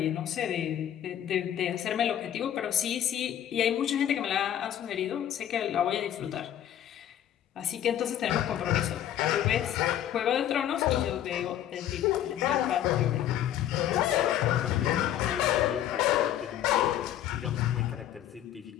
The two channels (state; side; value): quieter; right; 11.2 dB